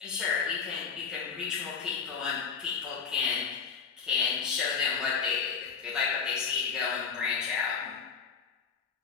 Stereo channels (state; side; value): quieter; right; 6.0 dB